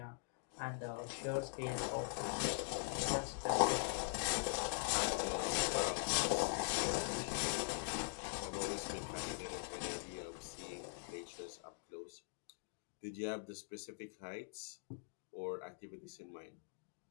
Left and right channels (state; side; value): silent; right; digital silence